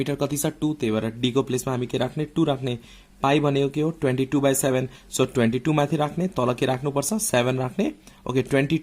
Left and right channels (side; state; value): both; identical; correlation 1.00